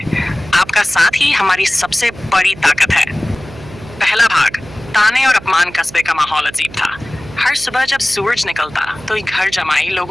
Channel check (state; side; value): noise; right; hum, 17 dB below the sound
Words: आपका साथ ही हमारी सबसे बड़ी ताकत है। पहला भाग, ताने और अपमान कस्बे का माहौल अजीब था। हर सुबह जब सूरज निकलता तो ये घर जमाई